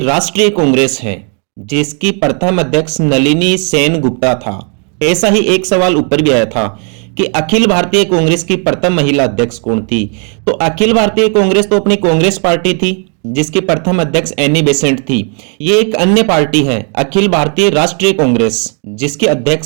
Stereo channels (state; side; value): quieter; left; 39.8 dB